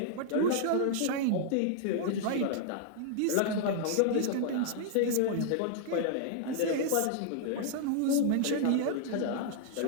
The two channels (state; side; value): different; both; correlation -0.01